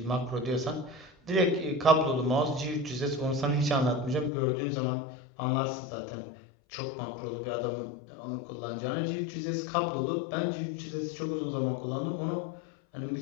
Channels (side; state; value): right; drops out; at 4.3 s